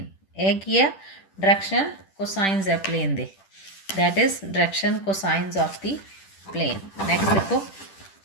एक ही है डायरेक्शन कोसाइंस है प्लेन दे, that is direction cosines of the plane. Next देखो,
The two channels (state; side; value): late; right; 10 ms